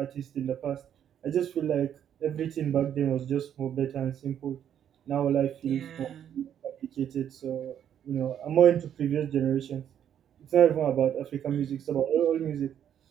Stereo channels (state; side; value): quieter; left; 9.6 dB